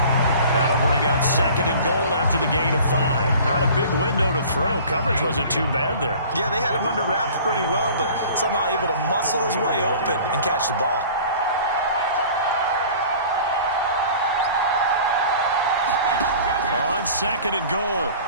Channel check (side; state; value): both; inverted; correlation -0.45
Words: That'll bring up 2nd and goal after the gain of 5. Not a big window to throw. Coverage wasn't too bad there. Yeah, they had him under wraps pretty well, but somehow able to muscle his way open and catch the ball. On 2nd and goal,